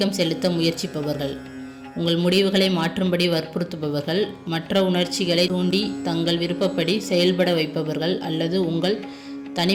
செலுத்த முயற்சிப்பவர்கள். உங்கள் முடிவுகளை மாற்றும்படி வற்புறுத்துபவர்கள், மற்ற உணர்ச்சிகளை தூண்டி தங்கள் விருப்பப்படி செயல்பட வைப்பவர்கள் அல்லது உங்கள்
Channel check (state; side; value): identical; both; correlation 1.00